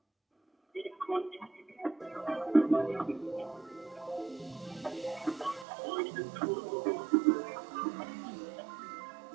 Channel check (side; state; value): left; drops out; at 5.7 s